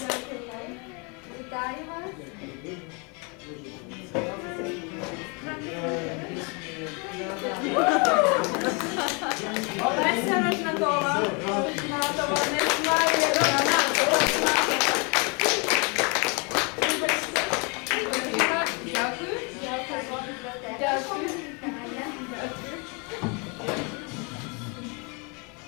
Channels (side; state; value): right; quieter; 32.7 dB